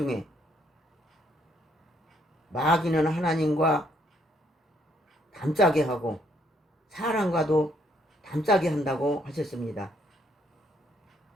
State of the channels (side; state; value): both; normal; correlation 0.70